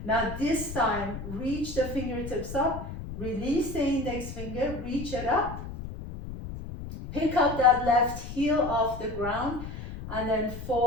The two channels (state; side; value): noise; left; rumble, 9 dB below the sound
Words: Now this time, reach the fingertips up, release the index finger, reach it up. Pick up that left heel off the ground and then